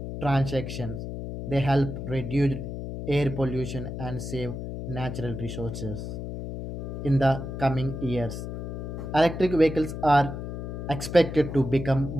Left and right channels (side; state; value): left; noise; hum, 6 dB below the sound